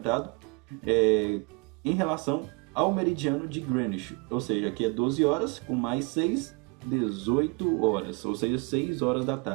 em relação ao meridiano de Greenwich, ou seja, aqui é 12 horas, com mais 6, 18 horas, ou seja, 6 horas da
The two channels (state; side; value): quieter; left; 30.2 dB